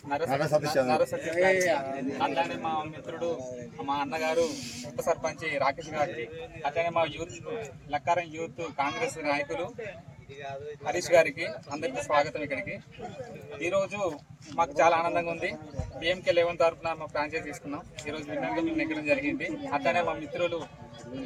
నర్ర సతీష్ అట్లానే మా మిత్రుడు మా అన్నగారు ఉప సర్పంచ్ రాకేష్ గారికి, అట్లానే మా యూత్ లక్కారం యూత్ కాంగ్రెస్ నాయకులు హరీష్ గారికి అందరికీ స్వాగతం. ఇక్కడికి ఈరోజు మాకు చాలా ఆనందంగా ఉంది. BMK11 తరఫున మా ఫ్రాంచైజ్ తీసుకున్నాం. ఈరోజు విన్నర్గా మేము నెగ్గడం జరిగింది. అట్లానే మా మిత్రులు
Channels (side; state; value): both; identical; correlation 1.00